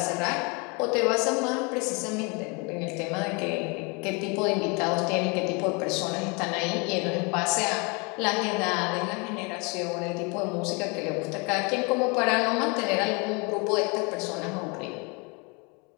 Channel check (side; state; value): right; quieter; 30.8 dB